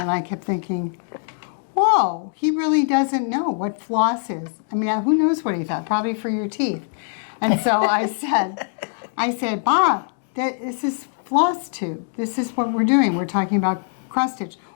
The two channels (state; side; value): silent; right; 60 dB below the other